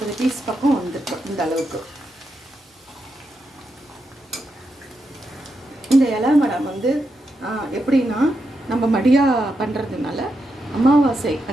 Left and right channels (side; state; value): both; normal; correlation 0.85